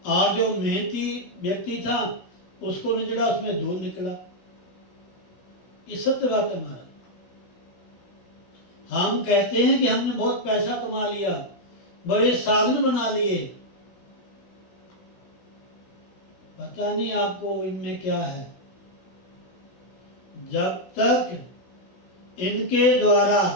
और जो मेहनती व्यक्ति था उसको निचोड़ा, उसमें दूध निकला। ये सत्य बात है महाराज। हम कहते हैं कि हमने बहुत पैसा कमा लिया, बड़े साधन बना लिए, पता नहीं आपको इनमें क्या है। जब तक इनके द्वारा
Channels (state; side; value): late; right; 17 ms